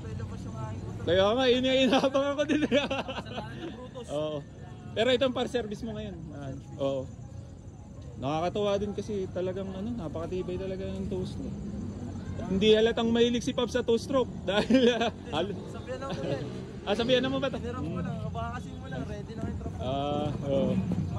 tayo labas yung aking motor. kaya nga, inabang ako din. Kasalanan ng Brutus. Oo. Pero itong par-service mo ngayon. Oo. Nakakatuwa din kasi talagang napakatibay talaga yung two-stroke. Hindi halatang mahilig si Pop sa two-stroke dahil Sabihan na mo yan. sabihan na mo ba ito? Nirap ko lang, baka kasi mo lang, ready na kayo tropa. Oo.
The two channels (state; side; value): identical; both; correlation 1.00